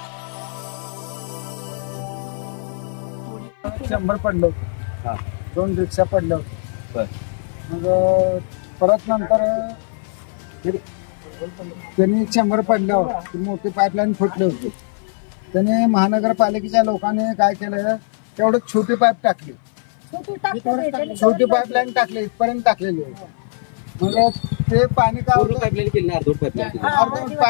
पडलं होतं, 2 रिक्षा पडलं होतं. मग परत नंतर त्यांनी 100 पडल्यावर मोठी पाईपलाईन फुटली होती. त्याने महानगरपालिकेच्या लोकांनी काय केलं, तेवढं छोटी पाईप टाकली, छोटी पाईपलाईन टाकली, इथपर्यंत टाकलेली होती. मग ते पाणी काय अर्धवट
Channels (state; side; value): silent; right; 59 dB below the other